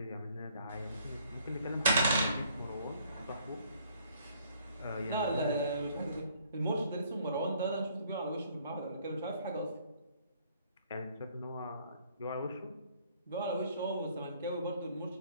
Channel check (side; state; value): both; inverted; correlation -0.62